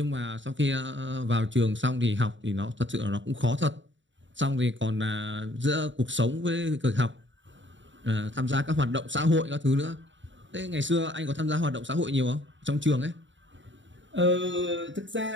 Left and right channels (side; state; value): left; late; 0.54 ms